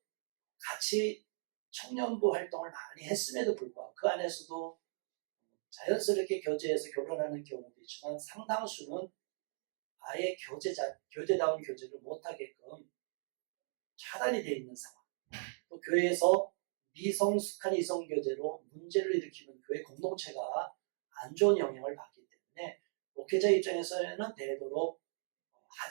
같이 청년부 활동을 많이 했음에도 불구하고 그 안에서도 자연스럽게 교제해서 결혼하는 경우도 있지만 상당수는 아예 교제다운 교제를 못하게끔 차단이 되어 있는 상황. 또 교회에서 미성숙한 이성교제로 문제를 일으키는 교회 공동체가 안 좋은 영향을 받기 때문에 목회자 입장에서는 되도록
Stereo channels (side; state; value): left; silent; digital silence